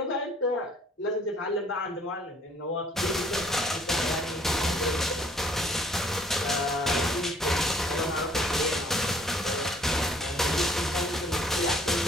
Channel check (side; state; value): both; normal; correlation 0.59